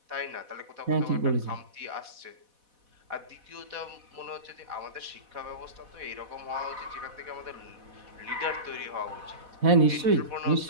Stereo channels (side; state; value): left; late; 4.1 ms